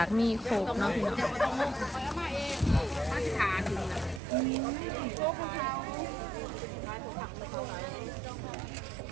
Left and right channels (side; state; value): left; drops out; at 4.2 s